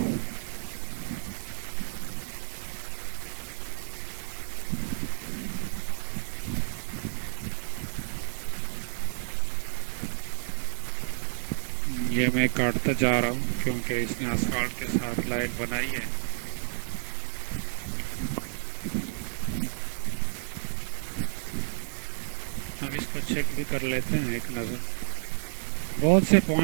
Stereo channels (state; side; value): silent; left; digital silence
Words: یہ میں کاٹتا جا رہا ہوں کیونکہ اس نے اسفالٹ کے ساتھ لائن بنائی ہے. اب اس کو چیک بھی کر لیتے ہیں ایک نظر. بہت سے